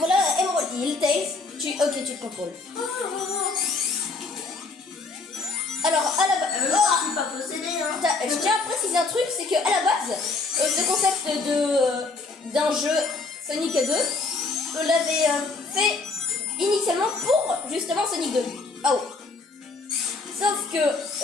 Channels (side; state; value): right; quieter; 3.8 dB